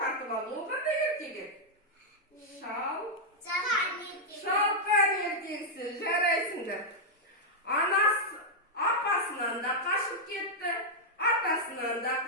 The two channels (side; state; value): both; normal; correlation -0.05